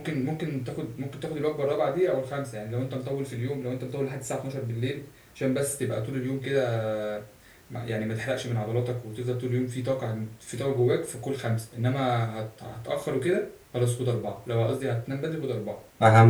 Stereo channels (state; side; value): identical; both; correlation 1.00